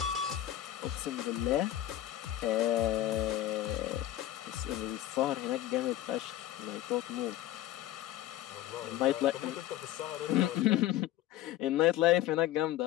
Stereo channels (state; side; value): quieter; right; 13.6 dB